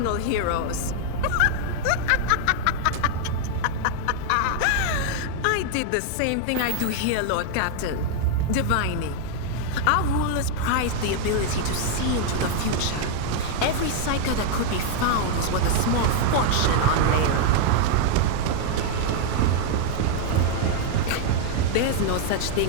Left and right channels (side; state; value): both; different; correlation 0.00